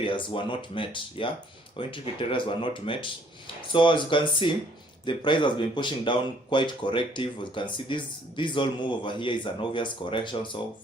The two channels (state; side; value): normal; both; correlation 0.62